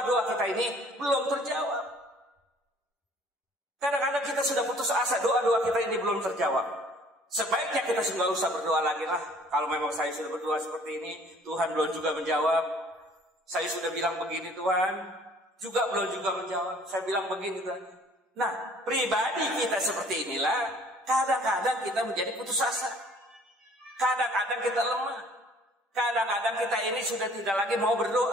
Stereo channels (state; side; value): normal; both; correlation 0.55